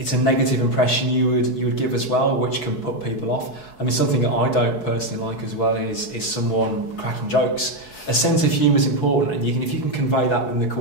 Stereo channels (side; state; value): right; late; 4.7 ms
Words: it's a negative impression you would give as well, which can put people off. I mean, something that I don't personally like as well is someone cracking jokes. A sense of humour is important, and if you can convey that in the